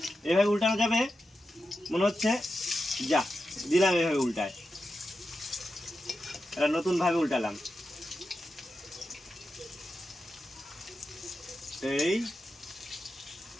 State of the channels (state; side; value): normal; both; correlation 0.90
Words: এভাবে উল্টানো যাবে মনে হচ্ছে। যা দিলাম এভাবে উল্টায়, এটা নতুন ভাবে উল্টালাম। এই